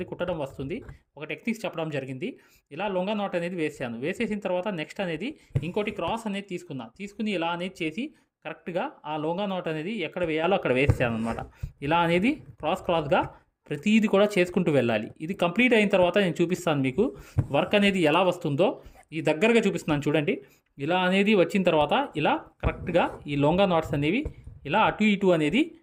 కుట్టడం వస్తుంది. ఒక టెక్నిక్స్ చెప్పడం జరిగింది. ఇలా లొంగా నాట్ అనేది వేసాను. వేసేసిన తర్వాత నెక్స్ట్ అనేది ఇంకోటి క్రాస్ అనేది తీసుకుని ఇలా అనేది చేసి కరెక్ట్గా ఆ లొంగా నాట్ అనేది ఎక్కడ వేయాలో అక్కడ వేసాను అనమాట. ఇలా అనేది క్రాస్గా ప్రతిదీ కూడా చేసుకుంటూ వెళ్ళాలి. ఇది కంప్లీట్ అయిన తర్వాత నేను చూపిస్తాను మీకు వర్క్ అనేది ఎలా వస్తుందో. ఈ దగ్గరగా చూపిస్తున్నాను చూడండి. ఇలా అనేది వచ్చిన తర్వాత ఇలా కరెక్ట్గా ఈ లొంగా నాట్స్ అనేవి ఇలా అటు ఇటు అనేది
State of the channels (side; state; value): both; identical; correlation 1.00